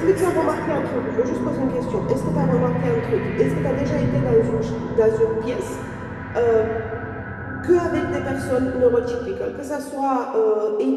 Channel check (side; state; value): both; identical; correlation 1.00